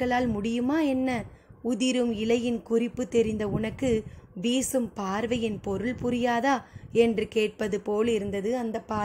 முடியுமா என்ன? உதிரும் இலையின் குறிப்பு தெரிந்த உனக்கு வீசும் பார்வையின் பொருள் புரியாதா என்று கேட்பது போல் இருந்தது அந்த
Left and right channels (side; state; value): both; identical; correlation 1.00